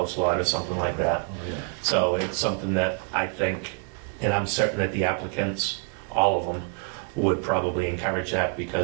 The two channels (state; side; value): quieter; left; 36.9 dB